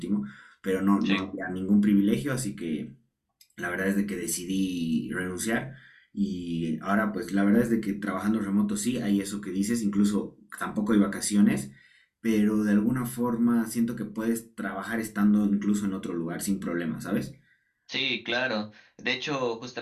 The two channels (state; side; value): identical; both; correlation 1.00